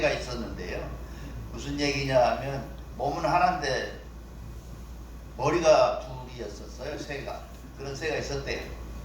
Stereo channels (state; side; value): identical; both; correlation 1.00